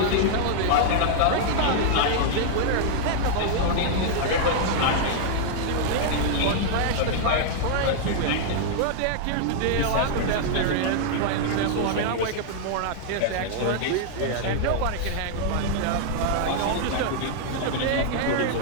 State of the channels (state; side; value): different; both; correlation -0.01